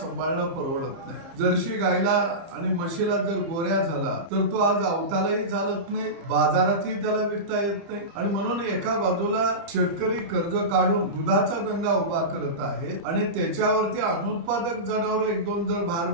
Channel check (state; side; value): late; left; 30 ms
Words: परवडत नाही। जर्सी गायला आणि म्हशीला जर गोऱ्या झाला तर तो आज अवतालाही चालत नाही, बाजारातही त्याला विकता येत नाही। आणि म्हणून एका बाजूला शेतकरी कर्ज काढून दुधाचा धंदा उभा करत आहे आणि त्याच्यावरती अनुत्पादक जनावर एक दोन जर भार